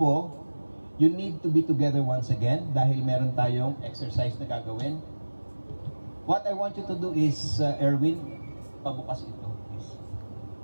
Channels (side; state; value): both; inverted; correlation -1.00